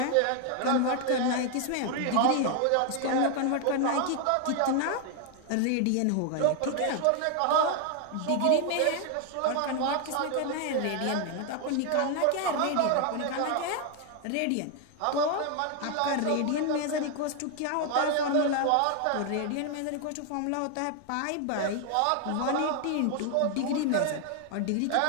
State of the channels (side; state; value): both; different; correlation 0.01